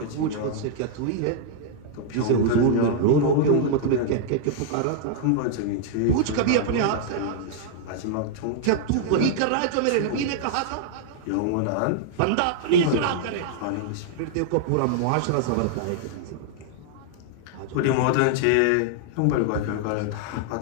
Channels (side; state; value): both; different; correlation -0.01